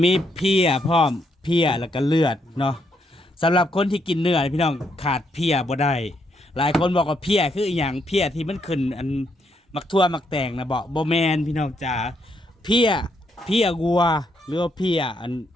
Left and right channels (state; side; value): normal; both; correlation 0.76